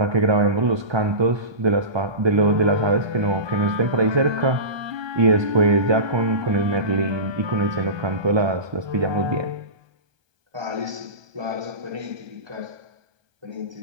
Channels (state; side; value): late; left; 1.2 ms